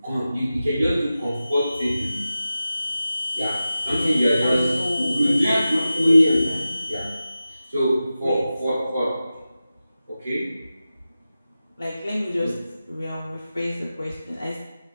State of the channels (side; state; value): both; inverted; correlation -0.93